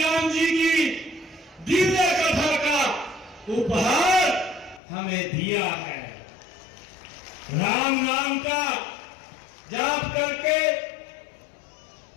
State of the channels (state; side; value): drops out; right; at 4.8 s